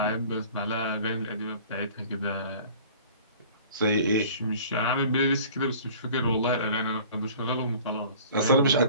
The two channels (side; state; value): both; inverted; correlation -0.47